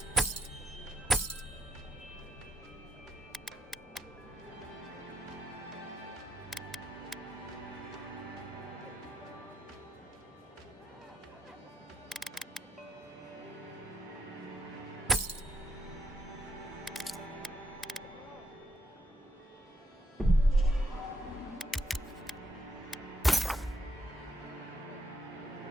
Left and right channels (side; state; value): both; normal; correlation 0.75